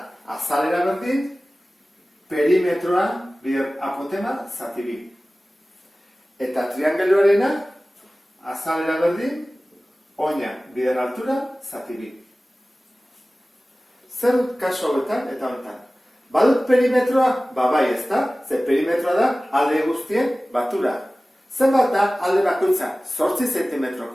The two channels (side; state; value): both; normal; correlation 0.97